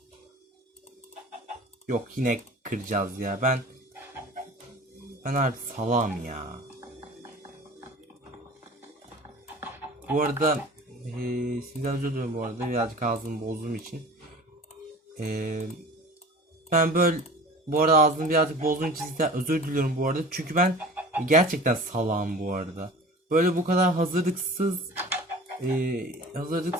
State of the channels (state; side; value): normal; both; correlation 0.40